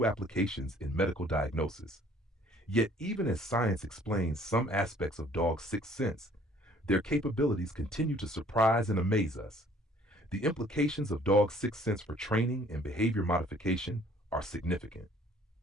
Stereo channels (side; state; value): both; normal; correlation 0.57